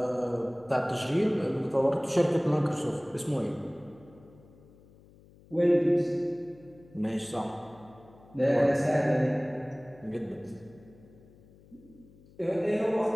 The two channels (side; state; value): left; noise; hum, 25 dB below the sound